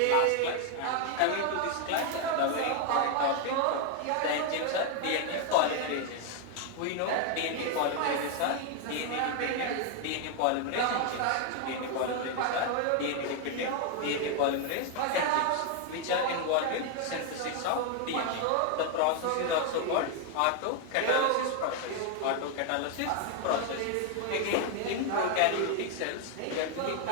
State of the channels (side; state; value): both; different; correlation 0.00